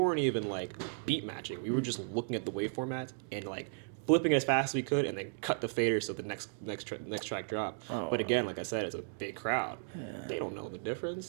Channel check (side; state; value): left; silent; digital silence